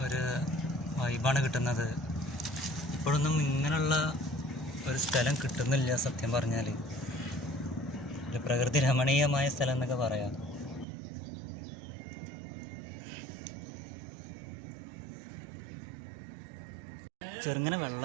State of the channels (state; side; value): drops out; left; at 10.9 s